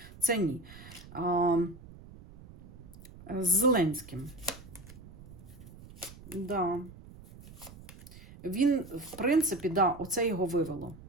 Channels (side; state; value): right; noise; rumble, 18 dB below the sound